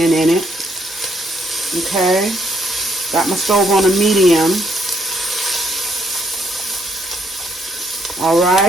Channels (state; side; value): normal; both; correlation 0.72